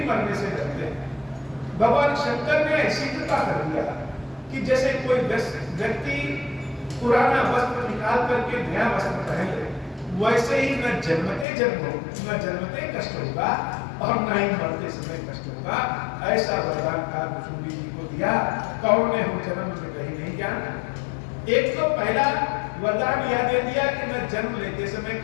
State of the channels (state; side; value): drops out; right; at 11.5 s